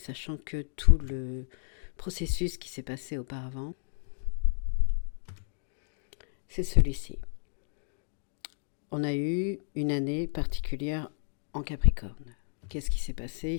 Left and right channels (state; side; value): silent; right; digital silence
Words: que tout le processus qui s'est passé auparavant, c'est celui-ci. On a eu une année particulière en Capricorne. Qu'est-ce qui s'est passé? Il